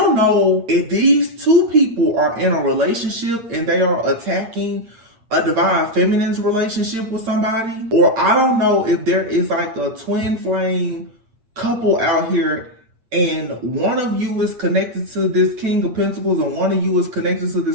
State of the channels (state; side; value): late; left; 8.6 ms